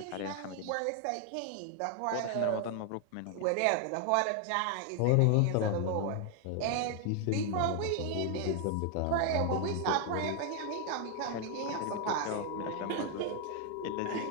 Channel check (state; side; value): different; both; correlation 0.01